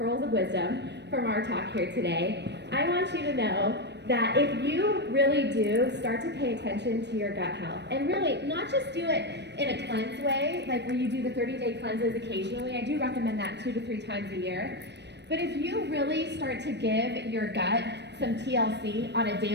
of wisdom from our talk here today. I want you to know that if you really do start to pay attention to your gut health, and really not just do it in a cleanse way, like where you do the 30-day cleanses occasionally, I do recommend that 2 to 3 times a year, but if you really start to give your gut some TLC on a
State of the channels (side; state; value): left; late; 0.50 ms